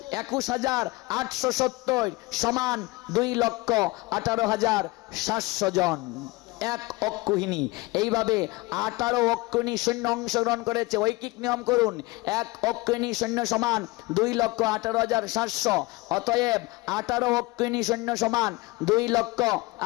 21,870 সমান 2,18,700 জন। 1 অক্ষৌহিনী। এইভাবে 18 অক্ষৌহিনী সৈন্য অংশগ্রহণ করেছে। ঐকিক নিয়ম করুন, 1 অক্ষৌহিনী সৈন্য সমান 2,18,700। অতএব 18 অক্ষৌহিনী সৈন্য সমান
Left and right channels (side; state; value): right; quieter; 22.7 dB